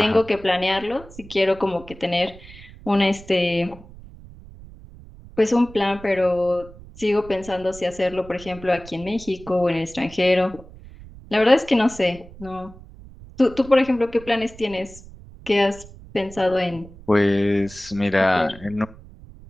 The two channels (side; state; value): right; noise; rumble, 19 dB below the sound